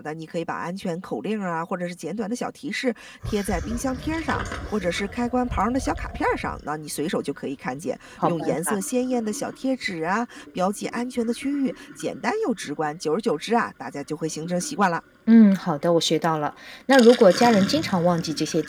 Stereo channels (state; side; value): identical; both; correlation 1.00